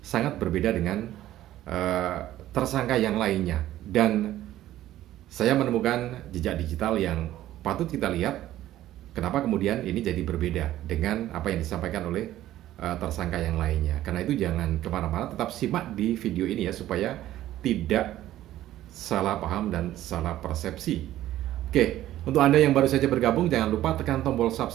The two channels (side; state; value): left; quieter; 13.8 dB